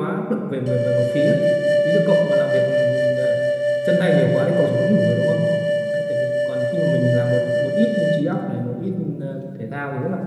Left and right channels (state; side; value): identical; both; correlation 1.00